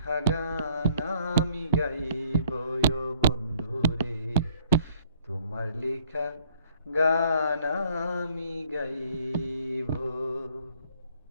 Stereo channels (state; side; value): inverted; both; correlation -0.63